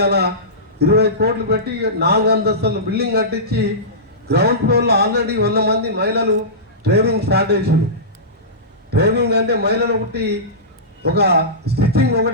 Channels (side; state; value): both; normal; correlation -0.19